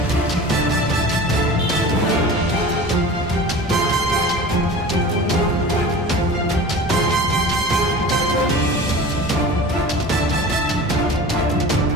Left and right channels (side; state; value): both; normal; correlation 0.37